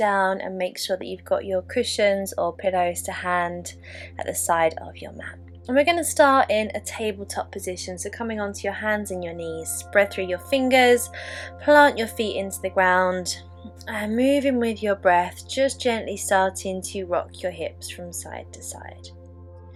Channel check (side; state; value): both; identical; correlation 1.00